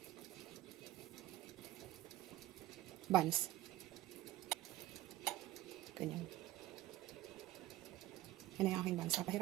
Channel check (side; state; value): left; quieter; 15.4 dB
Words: Buns. Ganyan. Yan ang aking buns.